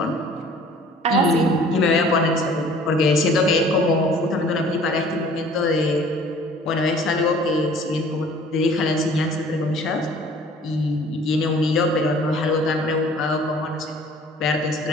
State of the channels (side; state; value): both; normal; correlation 0.51